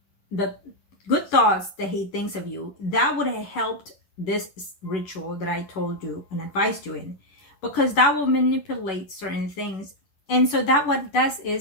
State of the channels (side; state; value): right; late; 10 ms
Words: the good thoughts that he thinks of you. That would have helped this ritual that I told you and advised you in, because that will manipulate certain things. And so that what does